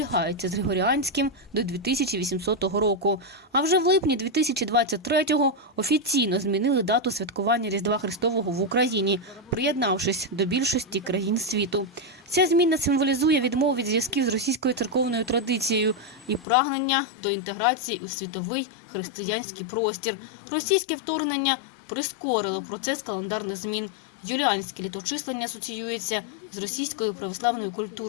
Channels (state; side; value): drops out; right; at 16.4 s